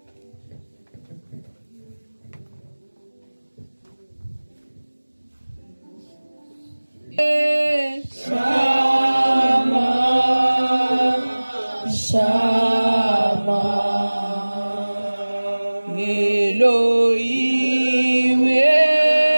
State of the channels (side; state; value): both; inverted; correlation -1.00